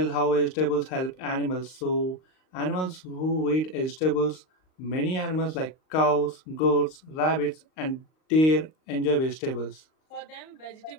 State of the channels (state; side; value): late; right; 38 ms